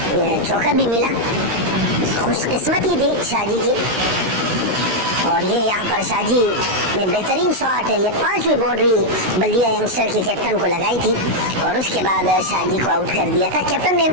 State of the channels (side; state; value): left; late; 16 ms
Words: चौका भी मिला, खुशकिस्मती थी शाजी की और ये यहाँ पर शाजी ने बेहतरीन शॉट है, ये 5वीं बाउंड्री बल्दिया यंगस्टर के कैप्टन को लगाई थी और उसके बाद शाजी को आउट कर दिया था। कैप्टन ने